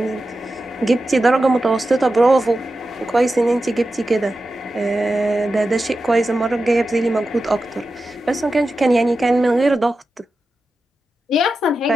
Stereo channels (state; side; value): normal; both; correlation 0.91